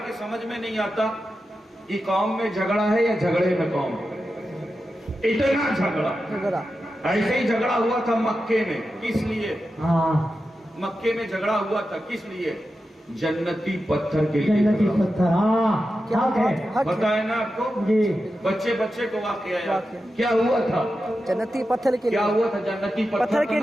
समझ में नहीं आता कि कौम में झगड़ा है या झगड़े में कौम, इतना झगड़ा। ऐसे ही झगड़ा हुआ था मक्के में, किस लिए? मक्के में झगड़ा हुआ था, किस लिए? जन्नती पत्थर के लिए। जन्नती पत्थर, पता है ना आपको जी? बच्चे को वाकया याद क्या हुआ था? जन्नती पत्थर के लिए। क्या हुआ था? जन्नती पत्थर के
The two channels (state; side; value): normal; both; correlation 0.91